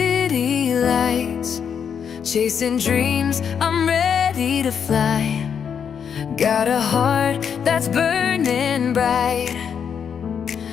lights, chasing dreams, I'm ready to fly. Got a heart that's burning bright,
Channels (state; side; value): quieter; right; 7.4 dB